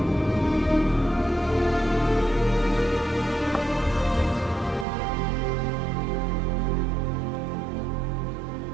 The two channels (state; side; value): drops out; left; at 4.9 s